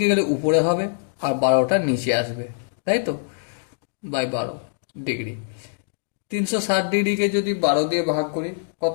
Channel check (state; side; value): silent; right; digital silence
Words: গেলে উপরে হবে আর 12টা নিচে আসবে, তাই তো? By 12 degree. 360 ডিগ্রিকে যদি 12 দিয়ে ভাগ করি